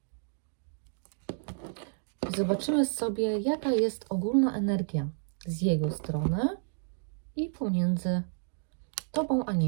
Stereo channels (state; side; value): silent; left; digital silence